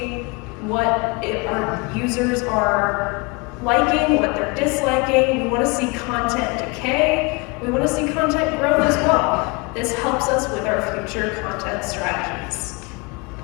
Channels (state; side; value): quieter; right; 28.9 dB